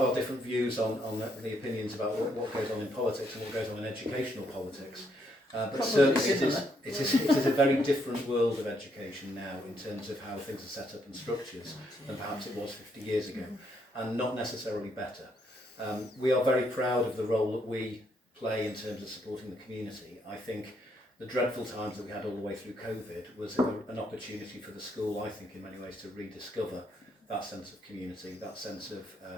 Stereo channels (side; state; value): both; normal; correlation 0.74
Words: different views on the opinions about what goes on in politics and what goes on in educational politics. But certainly it is a very different world of education now in terms of how things are set up and structured than perhaps it was 50 years ago, and not necessarily better. We are very proud of the role that we play in terms of supporting the community. I think the dreadful times that we had all the way through COVID was an opportunity for the school, I think, in many ways to rediscover that sense of community, that sense of